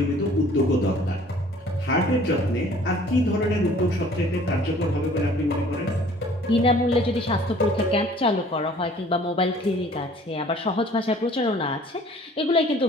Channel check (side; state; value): both; normal; correlation 0.53